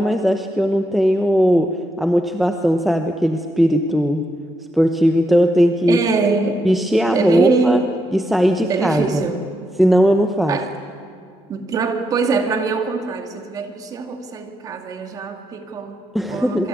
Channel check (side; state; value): both; normal; correlation 0.82